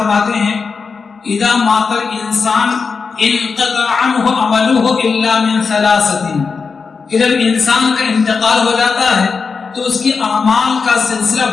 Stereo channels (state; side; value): quieter; right; 5.1 dB